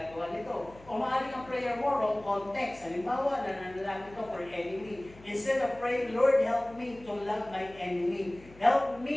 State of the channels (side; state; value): left; noise; hum, 22 dB below the sound